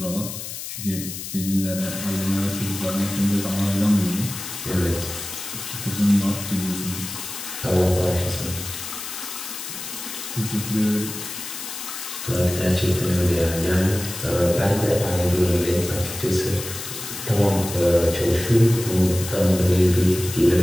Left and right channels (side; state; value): left; noise; hiss, 8 dB below the sound